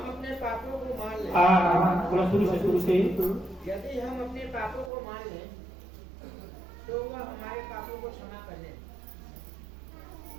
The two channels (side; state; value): left; drops out; at 4.9 s